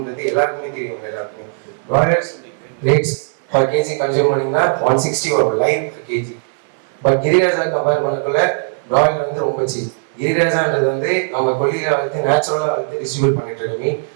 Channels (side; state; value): left; silent; digital silence